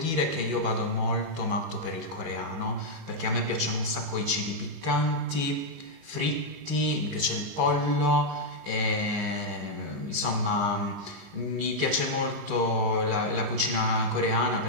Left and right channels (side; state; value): left; late; 19 ms